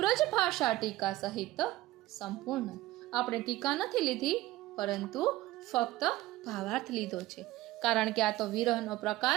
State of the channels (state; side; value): quieter; left; 17.0 dB